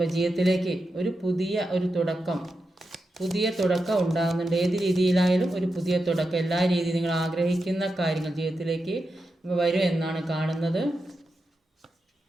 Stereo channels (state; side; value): normal; both; correlation 0.88